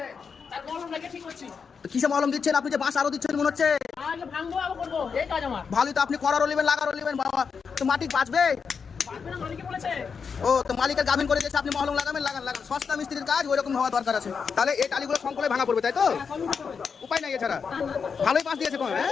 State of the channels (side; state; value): right; quieter; 5.9 dB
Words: কিসে মলম দিচ্ছেন আপনি? যে বাঁশ আরো দিচ্ছেন মনে হচ্ছে। ভালোই তো, আপনি করারও নেবেন লাগারও নেবেন বাবা, তো মাটি বাঁচবে। ও তো মালিকের গাভিন করে দিয়েছে, আপনি মহলম লাগাবেন, লাগান লাগান, সস্তা মিস্ত্রির কাজ ওই রকম হওয়া দরকার আছে। তাহলে এই টালিগুলো সংকলে ভাঙা পড়বে, তাই তো? উপায় নাই এছাড়া। ভালোই বাঁশ দিয়েছে কোন, হ্যাঁ?